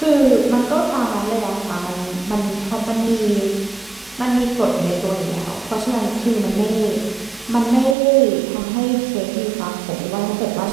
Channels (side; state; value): left; drops out; at 8.0 s